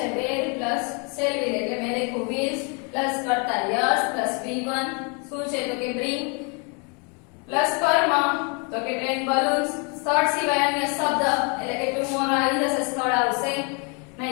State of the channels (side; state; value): right; quieter; 34.6 dB